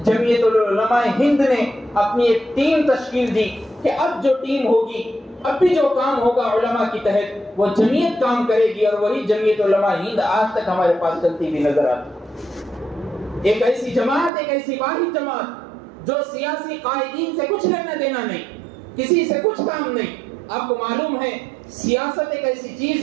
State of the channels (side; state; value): left; drops out; at 14.3 s